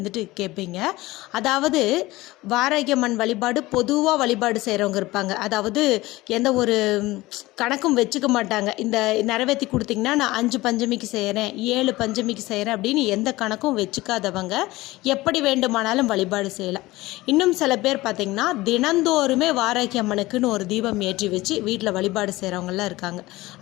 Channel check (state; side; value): quieter; right; 19.1 dB